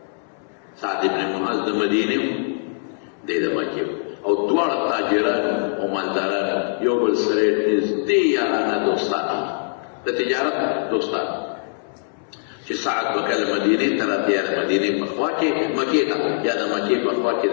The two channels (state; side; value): silent; right; 63 dB below the other